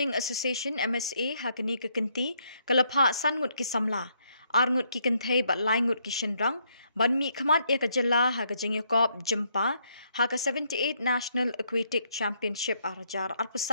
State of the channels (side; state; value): both; inverted; correlation -0.73